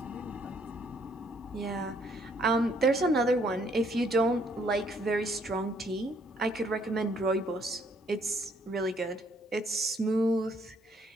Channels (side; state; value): both; normal; correlation 0.66